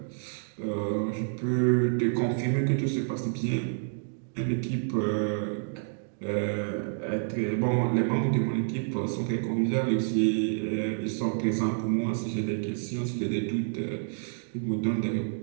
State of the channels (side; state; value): left; silent; digital silence